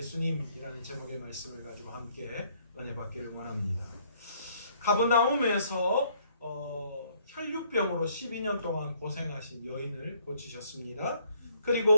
제목의 말씀을 가지고 함께 은혜 받기를 원합니다. 가버나움에서 혈류병으로 12년 동안 고생하신 여인을 고치셨습니다.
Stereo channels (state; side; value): inverted; both; correlation -0.64